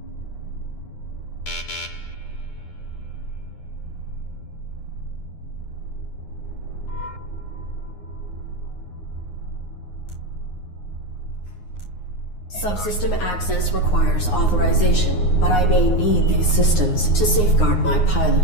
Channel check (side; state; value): right; late; 9.6 ms